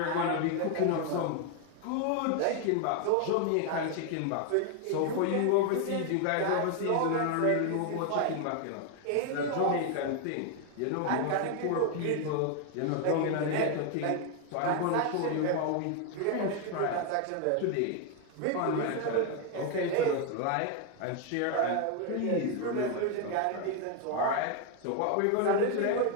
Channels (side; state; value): both; different; correlation 0.01